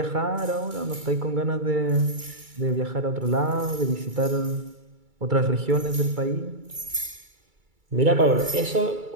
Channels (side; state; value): left; late; 2.3 ms